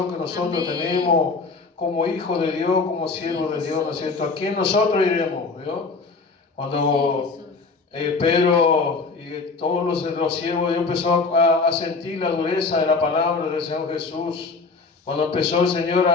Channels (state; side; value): quieter; right; 4.2 dB